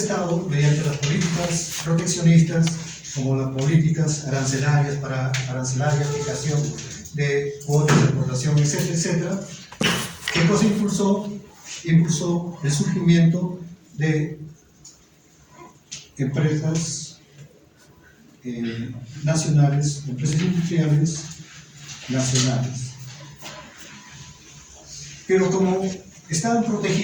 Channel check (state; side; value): identical; both; correlation 1.00